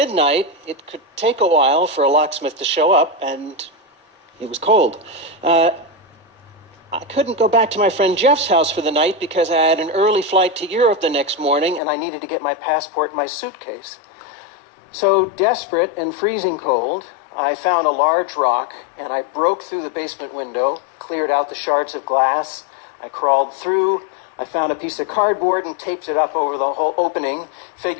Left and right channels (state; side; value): drops out; right; at 11.8 s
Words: it could take a while for a locksmith to show up, and it was cold. I couldn't go back to my friend Jeff's house for the night because I had an early flight to Europe the next morning, and I needed to get my passport in my suitcase. So, desperate and freezing cold, I found a large rock, and I broke through the basement window, cleared out the shards of glass. I crawled through. I found a piece of cardboard and taped it up over the whole opening,